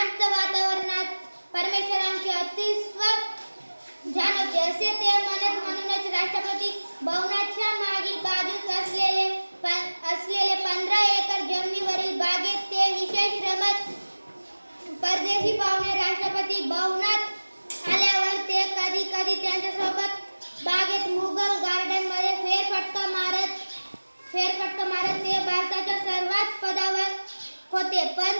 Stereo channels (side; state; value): both; inverted; correlation -1.00